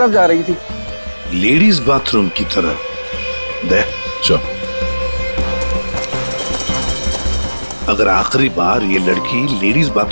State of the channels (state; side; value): inverted; both; correlation -1.00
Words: जा रही थी। लेडीज बाथरूम की तरफ? दे चल। अगर आखिरी बार ये लड़की लेडीज